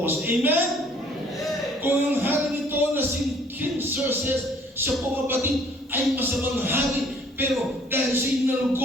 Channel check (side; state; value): both; normal; correlation 0.58